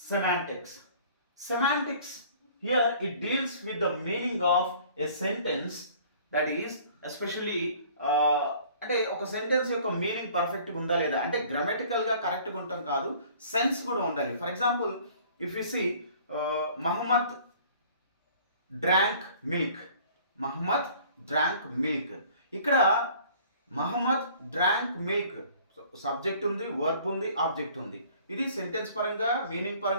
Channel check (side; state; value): both; inverted; correlation -0.52